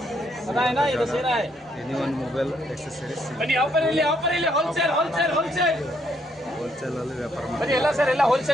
anyone mobile accessories wholesale ಅಲ್ಲಿ ವ್ಯಾಪಾರ ಮಾಡಿ ಎಲ್ಲ ಸರ್ ಎಲ್ಲ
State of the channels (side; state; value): both; normal; correlation 0.72